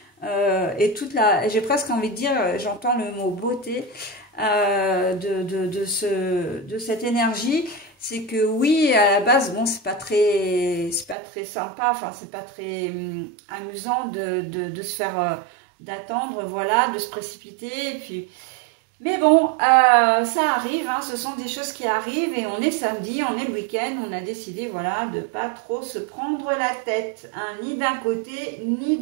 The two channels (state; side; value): drops out; left; at 11.2 s